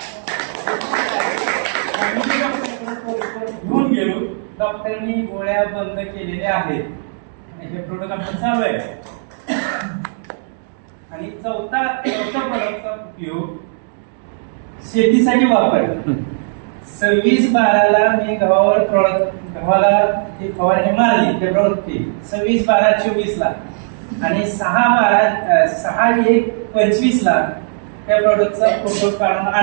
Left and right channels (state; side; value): silent; left; digital silence